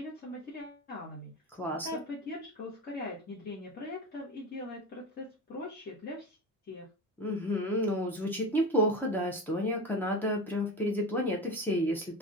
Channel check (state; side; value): normal; both; correlation 0.26